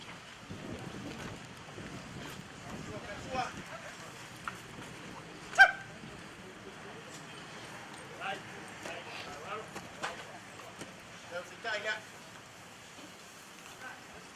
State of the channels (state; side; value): identical; both; correlation 1.00